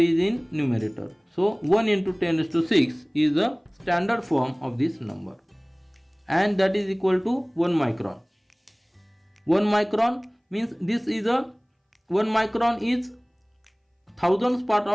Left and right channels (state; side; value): identical; both; correlation 1.00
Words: in numerator. So 1 into 10 raised to 6 is the standard form of this number. And that is equal to 1 micron. 1 micron means this is 1 micron is thousandths part